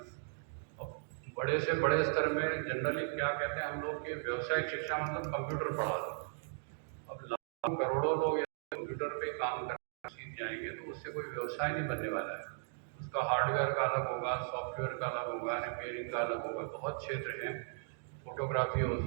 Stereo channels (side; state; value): left; silent; digital silence